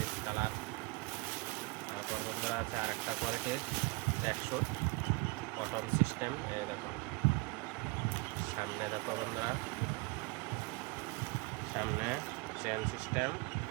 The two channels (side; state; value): left; quieter; 26.9 dB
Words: কালার। তারপর বন্ধুরা আছে আরেকটা কোয়ালিটির ট্র্যাকস্যুট কটন সিস্টেম। এই দেখো সামনে দেখো বন্ধুরা, সামনে চেন সিস্টেম।